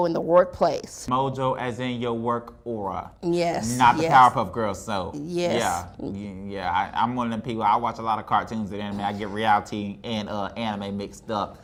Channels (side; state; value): both; identical; correlation 1.00